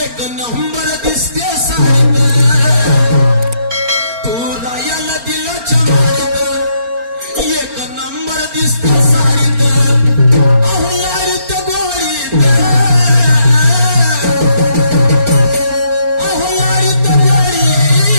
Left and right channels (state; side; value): late; left; 4.3 ms